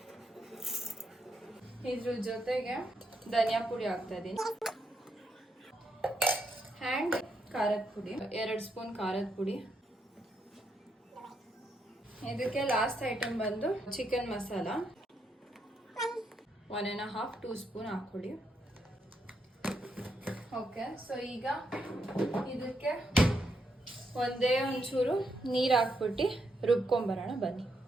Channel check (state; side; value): normal; both; correlation 0.79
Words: ಇದ್ರ ಜೊತೆಗೆ ಧನಿಯಾ ಪುಡಿ ಹಾಕ್ತಾ ಇದ್ದೀನಿ ಆ್ಯಂಡ್ ಖಾರದ ಪುಡಿ, 2 ಸ್ಪೂನ್ ಖಾರದ ಪುಡಿ. ಇದಕ್ಕೆ ಲಾಸ್ಟ್ ಐಟಮ್ ಬಂದು ಚಿಕನ್ ಮಸಾಲ 1.5-2 ಸ್ಪೂನ್ ಹಾಕ್ಕೊಳ್ಳಿ. ಓಕೆ, ಸೊ ಈಗ ಇದಕ್ಕೆ ಒಂದೇ ಒಂಚೂರು ನೀರು ಹಾಕ್ಬಿಟ್ಟು ರುಬ್ಕೊಂಬರೋಣ ಬನ್ನಿ.